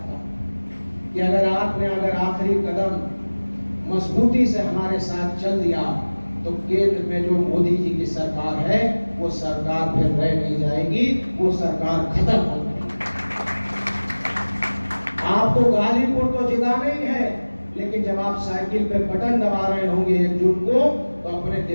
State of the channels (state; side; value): inverted; both; correlation -1.00